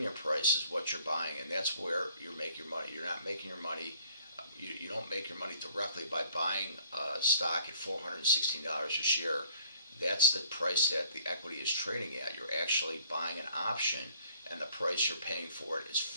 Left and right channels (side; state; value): both; inverted; correlation -0.60